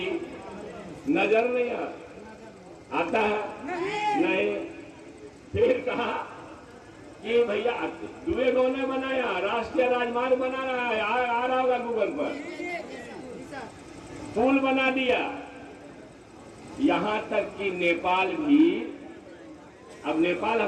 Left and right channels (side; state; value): both; identical; correlation 1.00